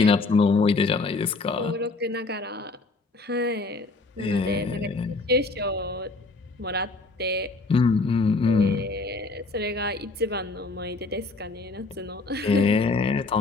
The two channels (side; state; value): right; quieter; 3.5 dB